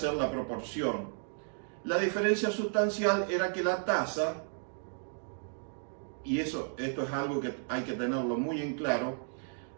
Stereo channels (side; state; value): left; silent; digital silence